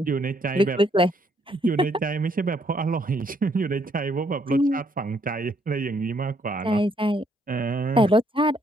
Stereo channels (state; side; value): normal; both; correlation 0.70